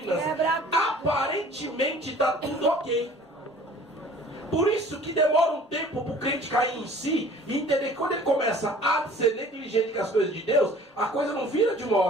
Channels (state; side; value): normal; both; correlation 0.49